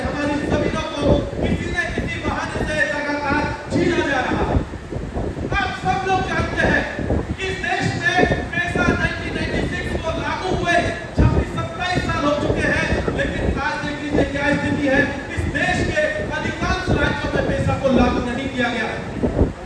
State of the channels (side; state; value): both; identical; correlation 1.00